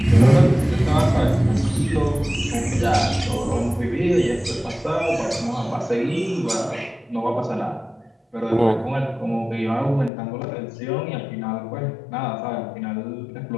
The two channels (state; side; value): drops out; right; at 10.1 s